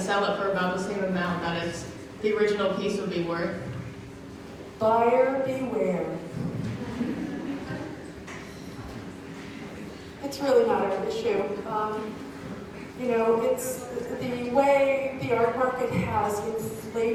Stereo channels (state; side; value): identical; both; correlation 1.00